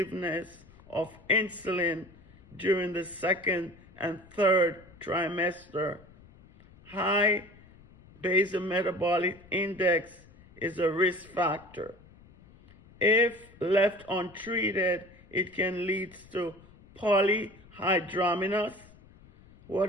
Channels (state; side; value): noise; left; rumble, 24 dB below the sound